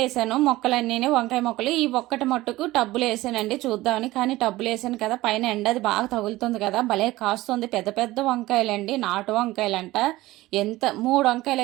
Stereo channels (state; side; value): quieter; left; 17.8 dB